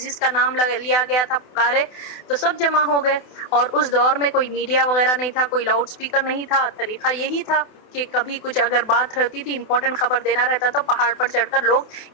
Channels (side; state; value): right; late; 28 ms